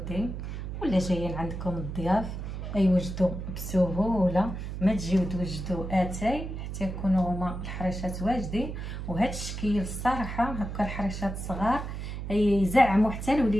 ولا جايين عندكم الضياف يوجدوا بسهوله، ما تجيو توجدوا اتاي حتى يكونوا هما الحريشات واجدين. وهذا الشكل الصراحه هكا الحريشات صغار يزعموا حتى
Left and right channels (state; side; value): noise; right; hum, 6 dB below the sound